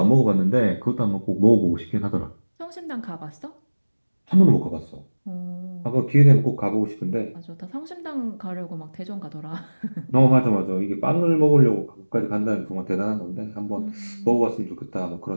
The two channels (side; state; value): both; inverted; correlation -1.00